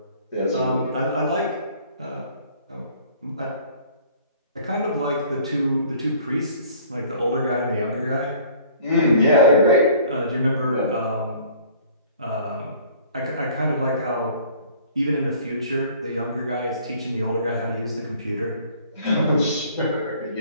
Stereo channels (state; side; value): inverted; both; correlation -0.53